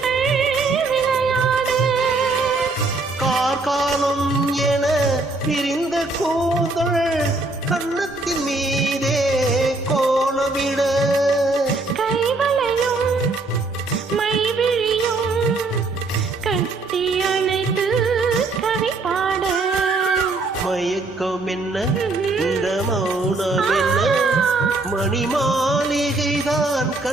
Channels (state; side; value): quieter; left; 3.3 dB